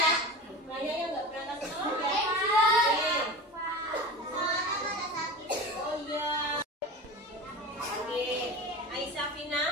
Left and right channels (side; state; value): both; normal; correlation 0.32